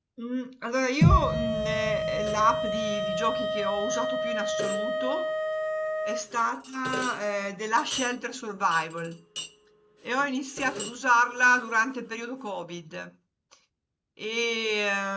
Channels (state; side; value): identical; both; correlation 1.00